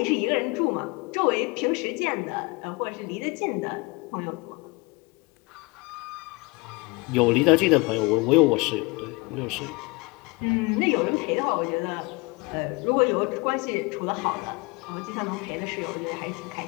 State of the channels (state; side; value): quieter; right; 26.7 dB